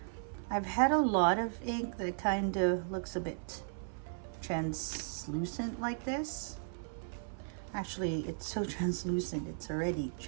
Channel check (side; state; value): left; silent; 54 dB below the other